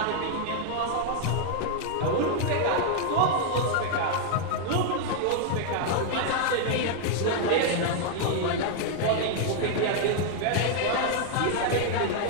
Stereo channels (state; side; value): different; both; correlation 0.00